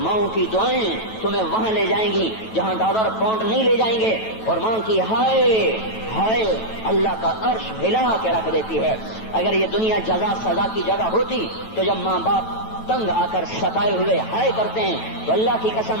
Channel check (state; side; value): late; right; 9.1 ms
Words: کی دعائیں تمہیں وہاں لے جائیں گی جہاں ڈالر پاؤنڈ نہیں لے جائیں گے، اور ماں کی ہائے اللہ کا عرش ہلا کے رکھ دیتی ہے۔ اگر یہ دنیا جزا سزا کی جگہ ہوتی تو جب ماں باپ تنگ آ کر ستائے ہوئے ہائے کرتے ہیں تو اللہ کی